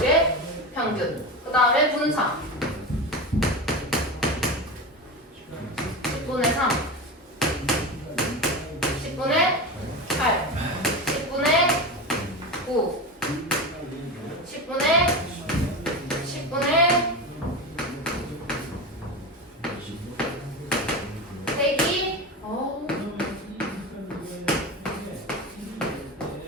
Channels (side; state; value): both; normal; correlation 0.22